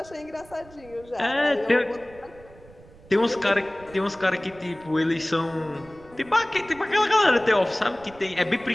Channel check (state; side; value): noise; right; rumble, 23 dB below the sound